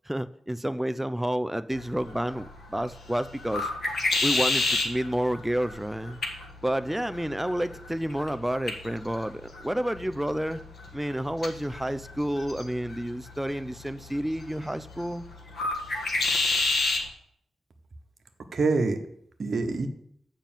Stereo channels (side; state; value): both; normal; correlation 0.88